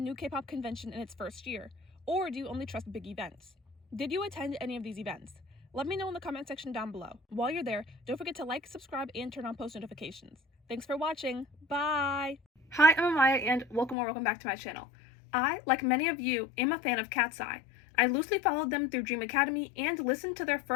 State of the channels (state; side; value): drops out; right; at 14.0 s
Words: K-pop convention in its first year? Or do you only trust big events? Did you attend any of these events? Let me know in the comment section down below. While you're there, don't forget to like, subscribe, and turn on post notifications. Thanks for watching. Bye! Hi, I'm Amaya, and welcome back to my channel. I, like many of you, am a fan of Katseye. I loosely followed them through Dream Academy and listened to their